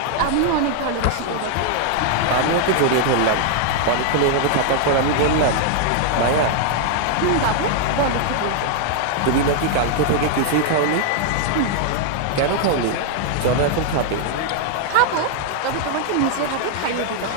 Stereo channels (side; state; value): both; different; correlation 0.00